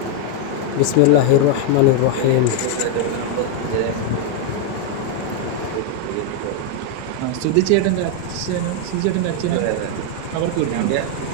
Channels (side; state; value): both; different; correlation 0.00